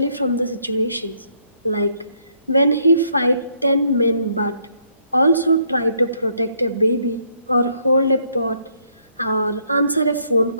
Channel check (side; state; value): both; inverted; correlation -0.70